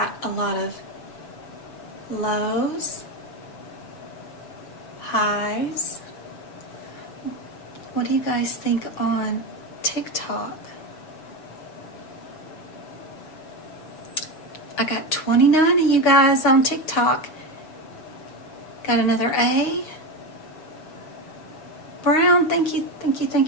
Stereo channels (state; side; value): late; right; 7.0 ms